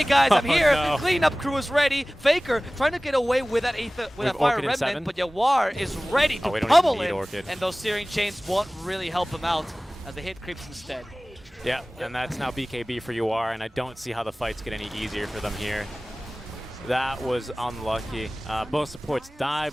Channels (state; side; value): normal; both; correlation 0.98